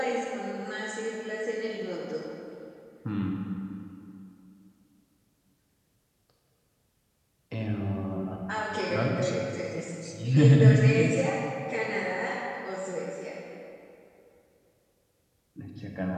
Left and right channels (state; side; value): identical; both; correlation 1.00